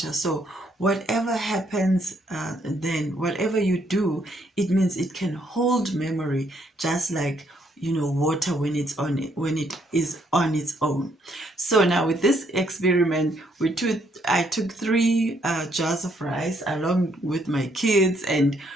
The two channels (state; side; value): normal; both; correlation 0.71